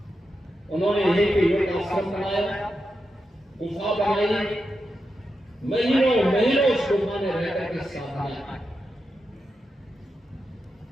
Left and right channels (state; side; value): normal; both; correlation 0.88